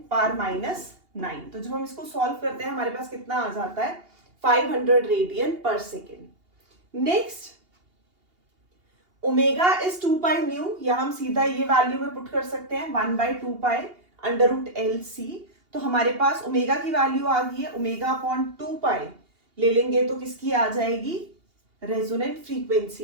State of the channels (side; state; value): left; late; 2.8 ms